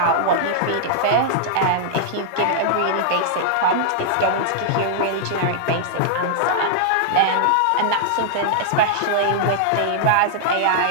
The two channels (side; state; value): both; different; correlation -0.01